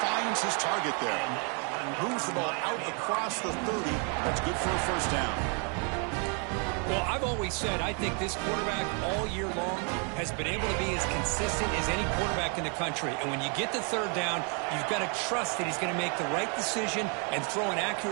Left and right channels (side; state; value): left; quieter; 37.9 dB